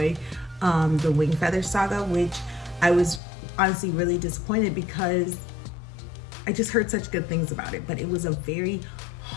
the Wing Feather Saga, which I was honestly really disappointed because I just heard such good things about it. But it was a very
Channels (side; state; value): right; drops out; at 3.2 s